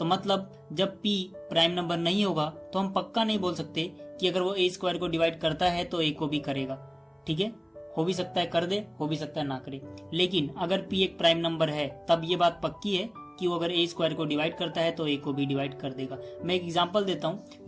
मतलब जब p प्राइम नंबर नहीं होगा तो हम पक्का नहीं बोल सकते कि अगर वो a स्क्वायर को डिवाइड करता है तो a को भी करेगा। ठीक है, हो भी सकता है कर दे, हो भी सकता है ना करे। लेकिन अगर p एक प्राइम नंबर है तब ये बात पक्की है कि वो अगर a स्क्वायर को डिवाइड करता है तो a को भी डिवाइड कर देगा। मैं एक एग्जांपल देता हूं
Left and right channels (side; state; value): both; identical; correlation 1.00